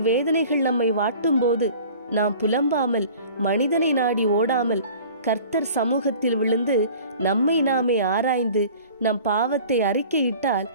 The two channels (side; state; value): both; inverted; correlation -0.45